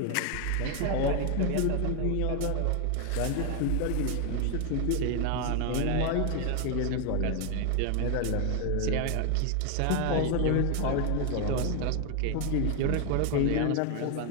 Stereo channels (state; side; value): different; both; correlation 0.01